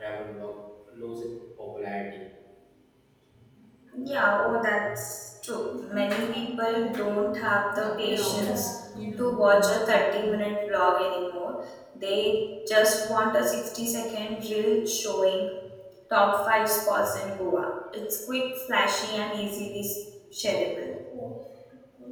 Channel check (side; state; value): both; identical; correlation 1.00